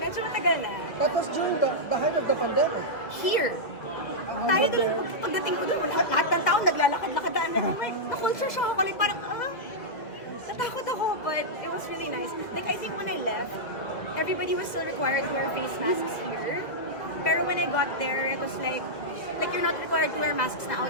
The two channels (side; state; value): right; late; 2.0 ms